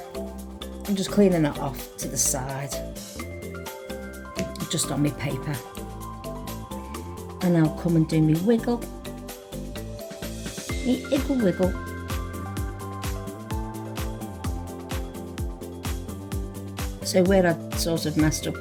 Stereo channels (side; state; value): both; identical; correlation 1.00